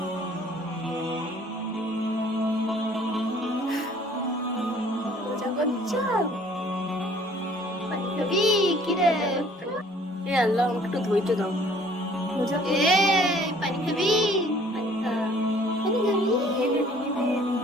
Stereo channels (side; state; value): both; normal; correlation 0.56